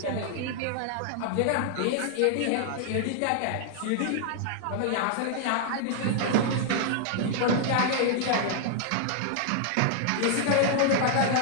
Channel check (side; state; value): both; different; correlation -0.01